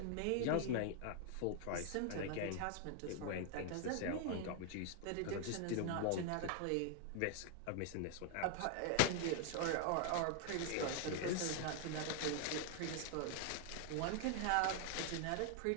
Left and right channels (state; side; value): different; both; correlation 0.00